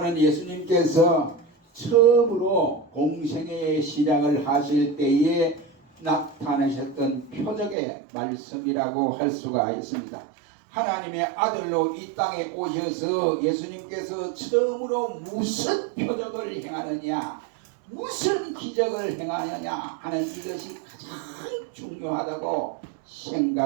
예수님께서 처음으로 공생애의 시작을 하실 때에 나타내셨던 표적의 말씀이라고 할 수가 있습니다. 하나님의 아들로 이 땅에 오셔서 예수님께서 처음으로 무슨 표적을 행하느냐, 무슨 기적을 행하느냐 하는 이것이 가장 중요하다고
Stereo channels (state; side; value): drops out; left; at 7.8 s